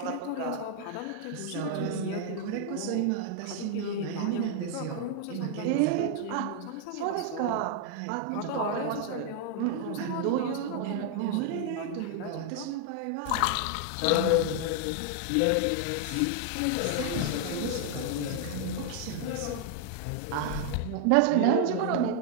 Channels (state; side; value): different; both; correlation 0.00